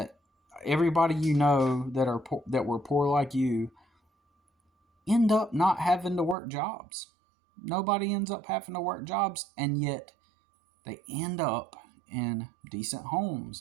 everybody you know that were poor like you end up not having to work jobs? Nobody ends up having to work jobs, and yet they end up in decent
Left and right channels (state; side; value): drops out; left; at 6.4 s